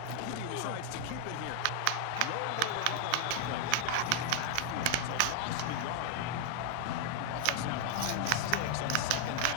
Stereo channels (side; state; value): both; different; correlation 0.00